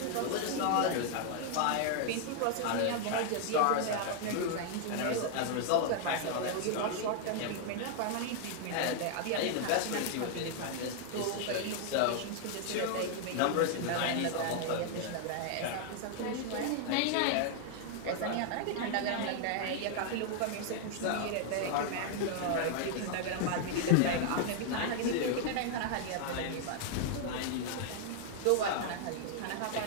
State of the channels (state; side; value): different; both; correlation 0.00